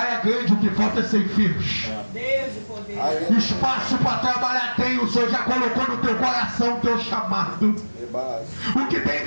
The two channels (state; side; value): inverted; both; correlation -1.00